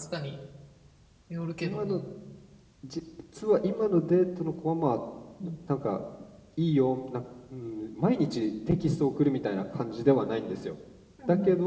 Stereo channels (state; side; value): identical; both; correlation 1.00